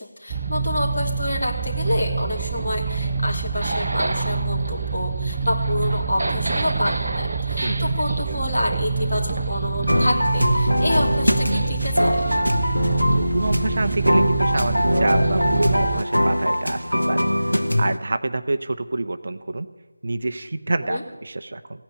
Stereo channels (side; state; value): both; inverted; correlation -0.91